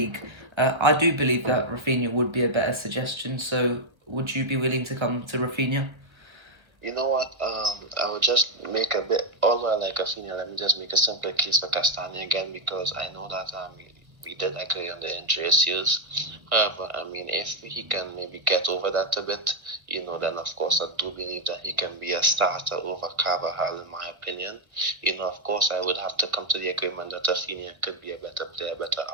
I do believe that Rafinha would be a better suggestion. So would you be willing to come to Rafinha? You know what? I would just make a bit, although I like Rafinha, let me just make a simple case for Castagna again, because I know that we did agree on the injury issues. However, I mean, if he can maybe get over that a bit, then of course I do believe that he can be a starter over Carvajal, in my opinion. Of course I would have to come to the agreement that Rafinha could be a better player, better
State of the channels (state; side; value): late; left; 1.5 ms